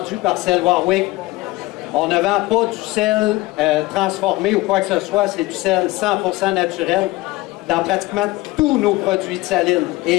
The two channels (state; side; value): quieter; right; 20.2 dB